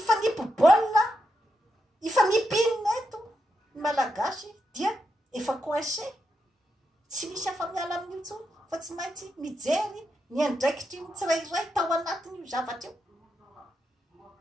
ifanipinina eto ny malagasy dia efa coincé tsy misy afa miala amin'ny intsony fa tsy maintsy mijery ny andraikitry ny tsirairay tao anatiny io zavatra io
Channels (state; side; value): normal; both; correlation 0.84